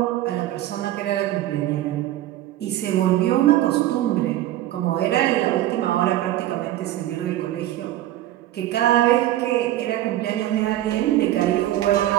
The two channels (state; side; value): quieter; left; 14.0 dB